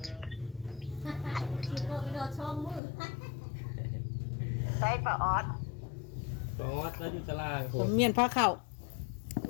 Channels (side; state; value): right; drops out; at 2.8 s